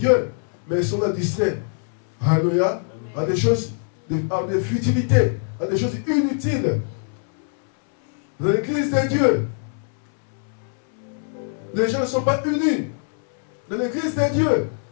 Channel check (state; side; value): silent; right; 64 dB below the other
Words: Mais ils sont là distraits. Alléluia. À des choses, à des futilités, à des choses inutiles. Dans l'église de Dieu, les gens ne sont pas unis. Dans l'église de Dieu,